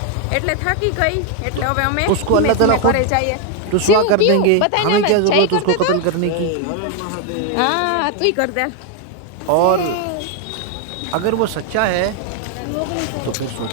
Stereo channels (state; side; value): different; both; correlation 0.01